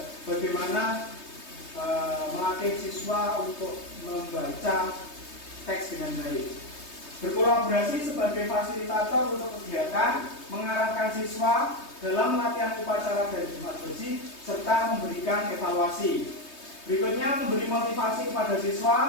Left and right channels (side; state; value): right; late; 3.2 ms